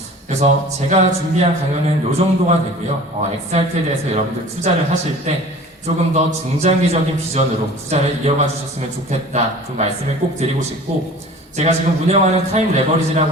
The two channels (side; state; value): both; normal; correlation 0.43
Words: 그래서 제가 준비한 강연은 이 정도가 되고요. XRP에 대해서 여러분들 투자를 하실 때 조금 더 중장기적인 비전으로 투자를 이어가 주셨으면 좋겠다 그 말씀을 꼭 드리고 싶고, 제가 지금 운영하는 타임 레버리지라고